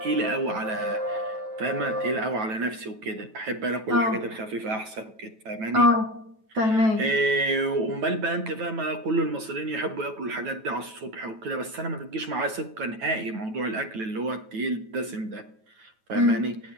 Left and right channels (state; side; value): late; left; 9.2 ms